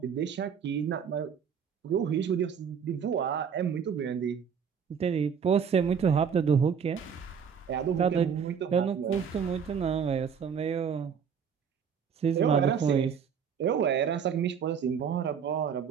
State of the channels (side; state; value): left; quieter; 7.1 dB